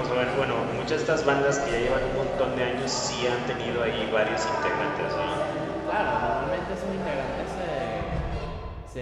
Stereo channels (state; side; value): identical; both; correlation 1.00